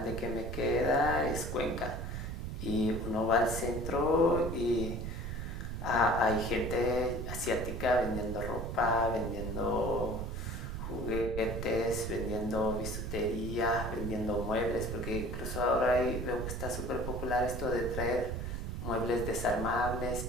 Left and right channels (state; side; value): noise; right; rumble, 5 dB below the sound